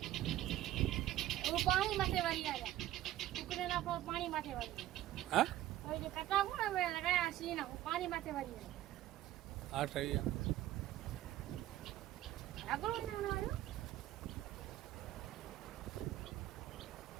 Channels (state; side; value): quieter; left; 14.0 dB